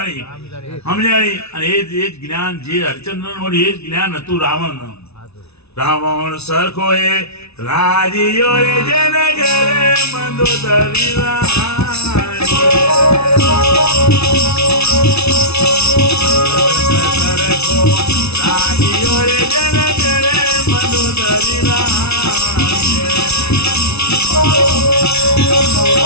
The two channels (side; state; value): right; late; 0.80 ms